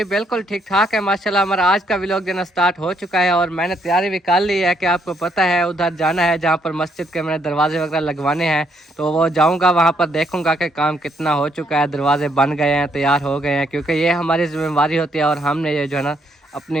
बिल्कुल ठीक ठाक है माशाल्लाह। हमारा आज का व्लॉग देना स्टार्ट हो चुका है और मैंने तैयारी भी कर ली है कि आपको पता है उधर जाना है जहाँ पर मस्जिद के मैंने दरवाजे वगैरह लगवाने हैं। तो वो जाऊँगा, वहाँ पर देखूँगा कि काम कितना हो चुका है, दरवाजे बन गए हैं, तैयार हो गए हैं, क्योंकि ये हमारी जिम्मेवारी होती है और हमने ये जो है ना अपनी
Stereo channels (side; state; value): both; normal; correlation 0.72